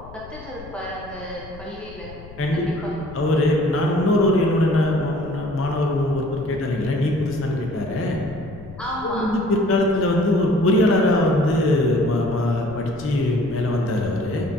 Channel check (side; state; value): left; noise; rumble, 17 dB below the sound